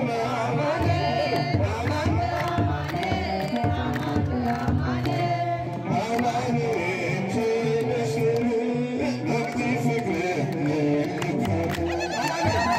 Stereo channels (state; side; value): identical; both; correlation 1.00